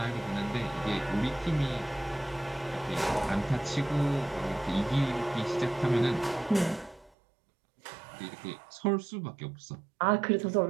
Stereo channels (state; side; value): drops out; left; at 7.1 s